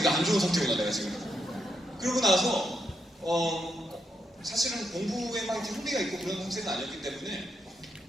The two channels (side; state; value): both; normal; correlation 0.80